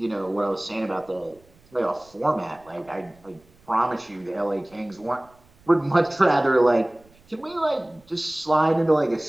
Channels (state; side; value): noise; right; rumble, 30 dB below the sound